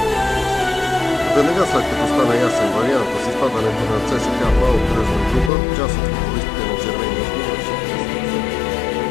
Веднага след като стана ясен вариант с изпадането на ЦСКА в по-кръжна група, част от футболистите на червения отбор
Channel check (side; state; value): right; drops out; at 5.5 s